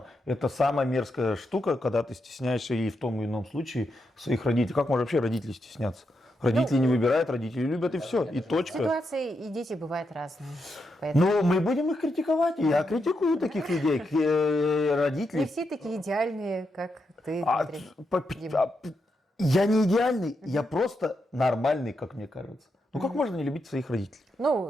Это самая мерзкая штука, когда ты стесняешься и в том или ином случае своих родителей. Как можно вообще родителей стесняться? Родители не выбирают, родители любят, и все, и точка. Ситуации и дети бывают разные. Ну, мы будем их критиковать, и я критикую таких людей, родителей. Не все такие идеальные, как ты, Дмитрий. Я не идеальный, я просто нормальный, как мне кажется. Ну как можно не любить своих родителей?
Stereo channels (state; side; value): normal; both; correlation 0.84